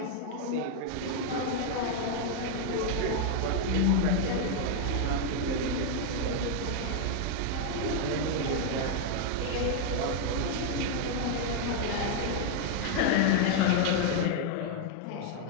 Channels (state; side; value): different; both; correlation 0.00